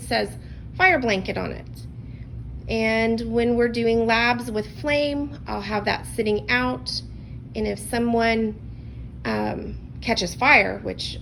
says fire blanket on it. And when we're doing labs with flame, I'll have that sitting out. And if someone catches fire, which,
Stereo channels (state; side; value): identical; both; correlation 1.00